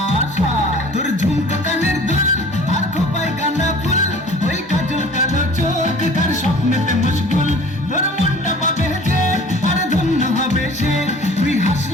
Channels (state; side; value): normal; both; correlation 0.46